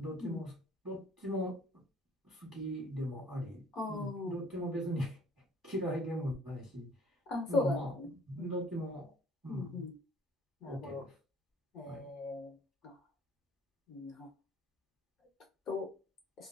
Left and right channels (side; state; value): both; normal; correlation 0.56